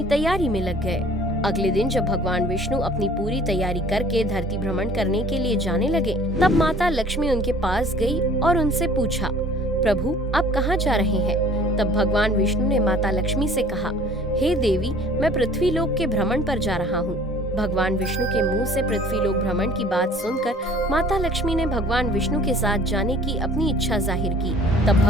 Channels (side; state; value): both; normal; correlation 0.51